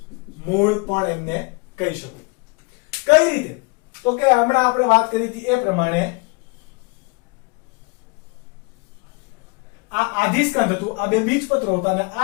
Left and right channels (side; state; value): right; quieter; 30.2 dB